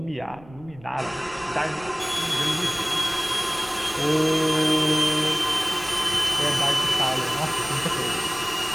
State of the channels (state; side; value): noise; right; rumble, 22 dB below the sound